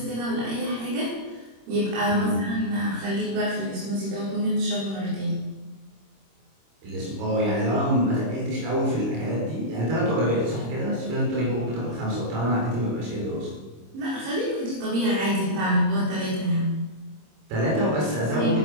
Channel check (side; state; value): left; late; 26 ms